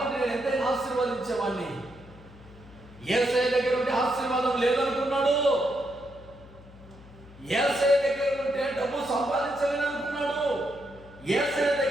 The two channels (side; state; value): left; noise; hum, 21 dB below the sound